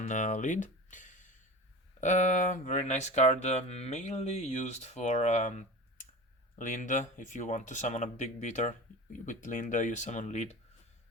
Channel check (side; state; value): both; normal; correlation 0.33